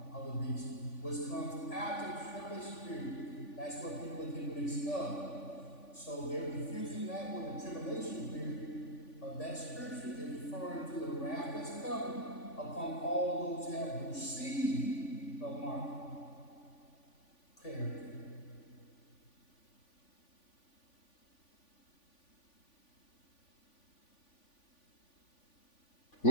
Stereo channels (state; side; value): late; right; 3.5 ms